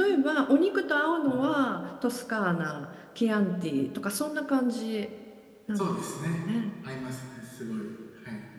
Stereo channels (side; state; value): both; identical; correlation 1.00